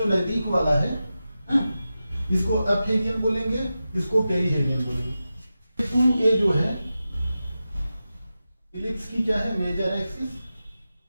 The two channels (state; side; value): inverted; both; correlation -0.92